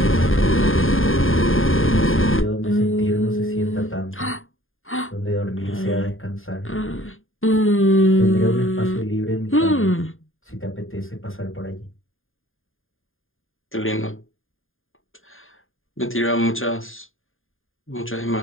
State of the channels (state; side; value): late; right; 0.59 ms